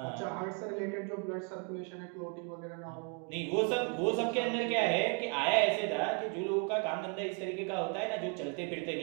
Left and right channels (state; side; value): quieter; left; 39.2 dB